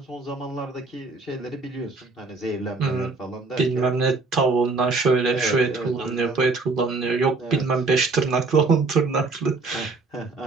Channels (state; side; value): quieter; left; 3.8 dB